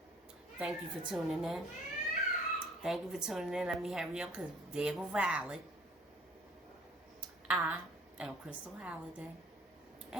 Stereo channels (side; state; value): both; normal; correlation 0.54